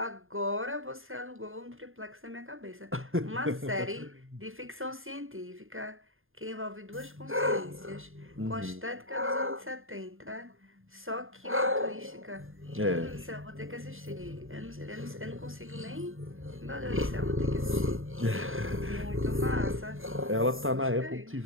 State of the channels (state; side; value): late; left; 0.59 ms